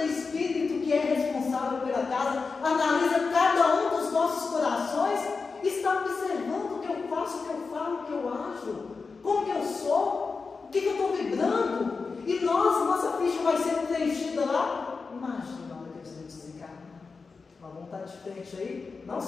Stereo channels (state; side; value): quieter; right; 4.6 dB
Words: espírito que é responsável pela casa analisa cada um dos nossos corações e está observando o que eu faço, o que eu falo, o que eu acho, como que eu sou, o que eu estou vibrando. E nossa ficha vai ser preenchida lá. Imagina na hora que a gente desencarna. Nós vamos estar de frente aí, não